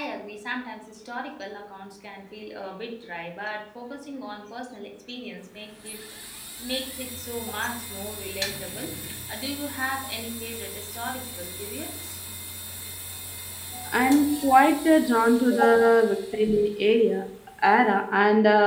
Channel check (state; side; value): identical; both; correlation 1.00